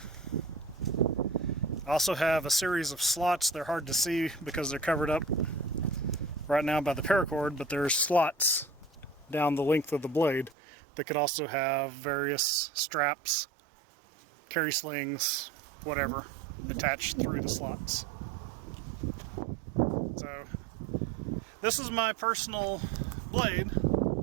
I also have a series of slots. They're hard to see because they're covered up right now by the paracord, but there's slots down the length of the blade that could also have various straps, carry slings, whatever, attached through the slots. So this is my personal blade.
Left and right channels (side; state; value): left; drops out; at 10.6 s